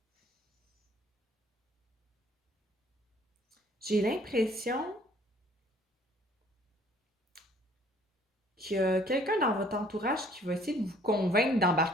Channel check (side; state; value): both; normal; correlation 0.58